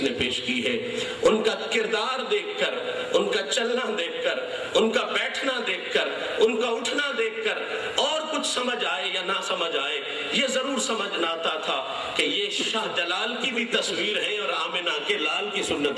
نے پیش کی ہے۔ ان کا کردار دیکھ کر، ان کا چلنا دیکھ کر، ان کا بیٹھنا دیکھ کر، ان کا اٹھنا دیکھ کر اور کچھ سمجھ آئے یا نہ سمجھ آئے، یہ ضرور سمجھنا آتا تھا کہ یہ شاہ جلال کی بھی تصویر ہے اور آمنہ کے لال کی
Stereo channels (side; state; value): both; identical; correlation 1.00